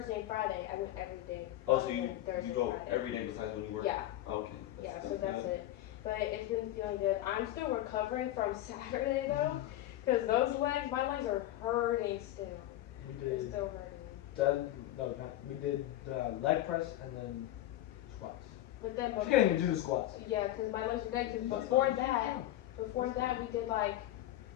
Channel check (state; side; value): quieter; right; 14.2 dB